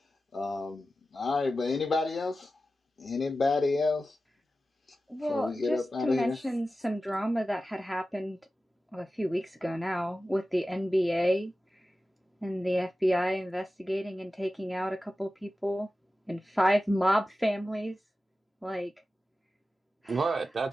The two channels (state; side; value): normal; both; correlation 0.94